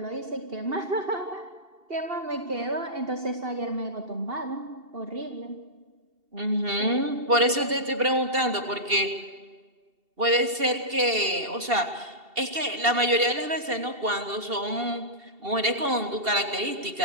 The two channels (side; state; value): left; late; 2.7 ms